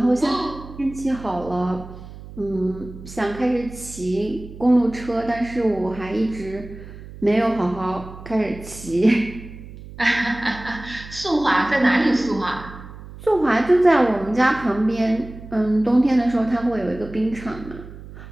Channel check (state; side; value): noise; right; hum, 15 dB below the sound